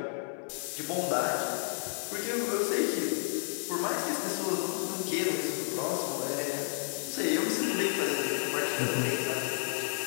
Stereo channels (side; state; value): right; silent; digital silence